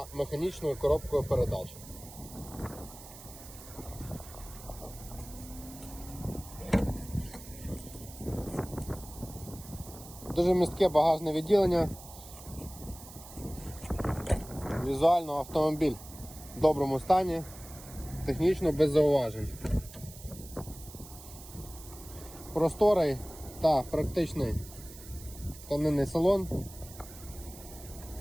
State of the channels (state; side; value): noise; right; hiss, 16 dB below the sound